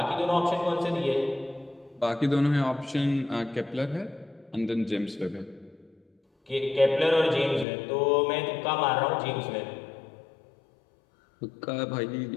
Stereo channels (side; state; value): right; drops out; at 7.7 s